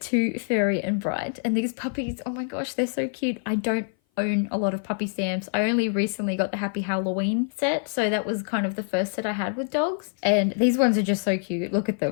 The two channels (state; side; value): silent; right; 57 dB below the other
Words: Fairy and Bright. And these puppies, oh my gosh, they're so cute. I don't own a lot of puppy stamps. I only recently got the Happy Halloween set, so that was kind of the first set I had with dogs. And these ones are just so cute. Look at